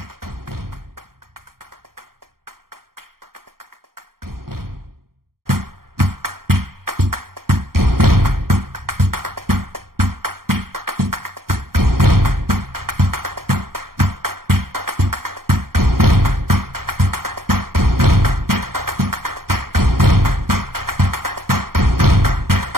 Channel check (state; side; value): late; left; 0.93 ms